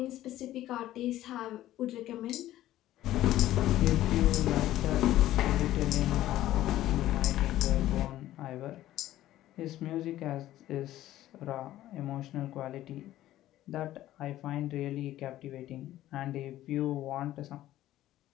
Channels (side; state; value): right; quieter; 14.1 dB